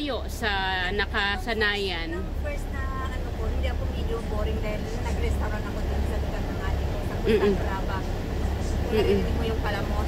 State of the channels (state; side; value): identical; both; correlation 1.00